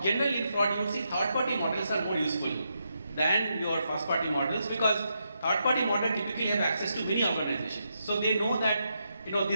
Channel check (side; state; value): both; inverted; correlation -0.82